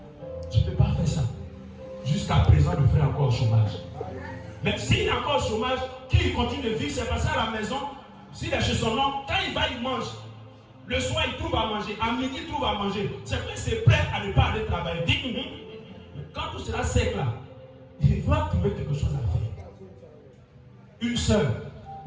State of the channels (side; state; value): both; identical; correlation 1.00